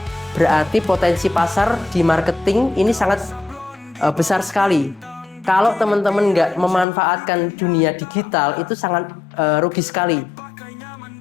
Berarti potensi pasar di marketing ini sangat besar sekali. Kalau teman-teman nggak memanfaatkan dunia digital itu sangat rugi sekali.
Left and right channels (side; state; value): right; drops out; at 6.9 s